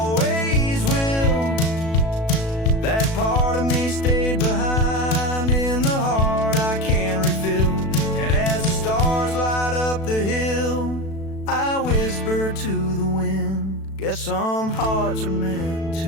will. That part of me stayed behind in the heart I can't refill. And as the stars light up the hill, I whisper to the wind, guess some hearts are meant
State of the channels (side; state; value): right; late; 36 ms